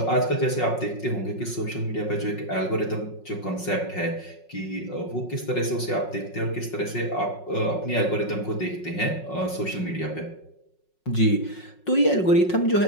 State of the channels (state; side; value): late; right; 5.5 ms